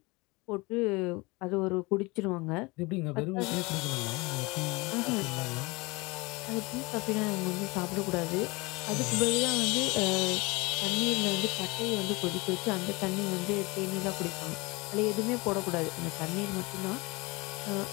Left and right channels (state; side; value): quieter; right; 24.9 dB